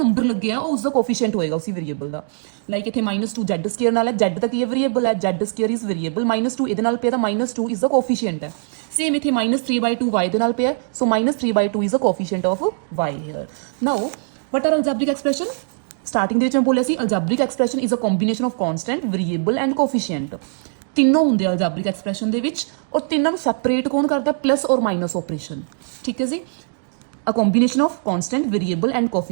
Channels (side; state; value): left; silent; 64 dB below the other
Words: ਲੱਗਿਆ ਉਹ ਉਸਦਾ ਕੋਫੀਸ਼ੀਐਂਟ ਹੋਏਗਾ ਉਸੇ ਵੇਰੀਏਬਲ ਦਾ. ਲਾਈਕ ਇੱਥੇ -2z² ਨਾਲ ਹੈ, z ਤਾਂ ਕੀ ਹੈ? ਵੇਰੀਏਬਲ ਹੈ, z² ਇਜ਼ ਵੇਰੀਏਬਲ. -2 ਇਹਦੇ ਨਾਲ ਪਿਆ ਤਾਂ -2 ਇਜ਼ ਦਾ ਕੋਫੀਸ਼ੀਐਂਟ ਹੈ. ਸੇਮ ਇੱਥੇ -3/2 y ਦੇ ਨਾਲ ਪਿਆ, so -3/2 is the coefficient of y here. Now what are algebraic expression? Starting ਦੇ ਵਿੱਚ ਮੈਂ ਬੋਲਿਆ ਸੀ algebraic expression is a combination of constant, variable and coefficient. ਤਿੰਨੋਂ ਹੁੰਦੇ ਆ ਅਲਜੈਬਰਿਕ ਐਕਸਪ੍ਰੈਸ਼ਨ ਦੇ ਵਿੱਚ, ਔਰ ਤਿੰਨਾਂ ਨੂੰ ਸੈਪਰੇਟ ਕੌਣ ਕਰਦਾ? ਪਲੱਸ ਔਰ ਮਾਈਨਸ ਆਪਰੇਸ਼ਨ. ਠੀਕ ਹੈ ਜੀ. A combination of constant, variable and